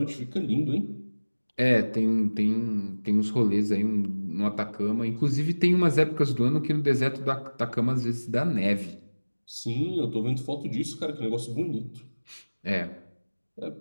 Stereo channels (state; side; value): inverted; both; correlation -1.00